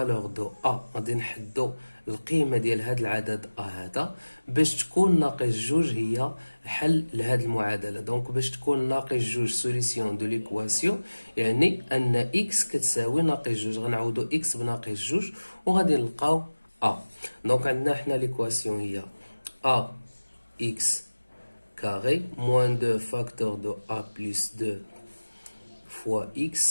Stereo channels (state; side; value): inverted; both; correlation -1.00